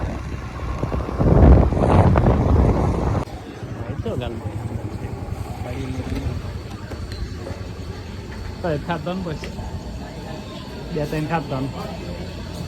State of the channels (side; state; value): both; identical; correlation 1.00